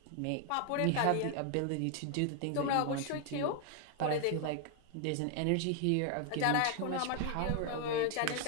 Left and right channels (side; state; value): both; different; correlation 0.00